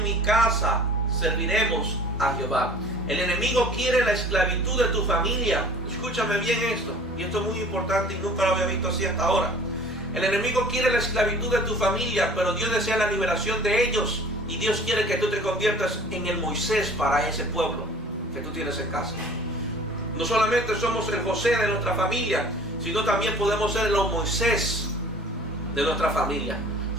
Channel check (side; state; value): both; normal; correlation 0.47